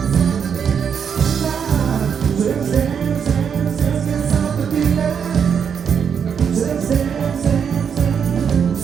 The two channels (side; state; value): left; quieter; 7.2 dB